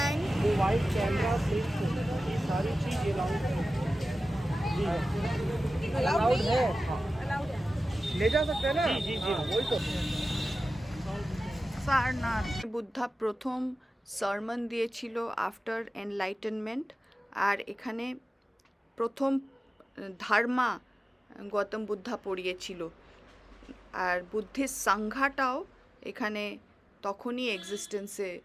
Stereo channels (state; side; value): normal; both; correlation 0.95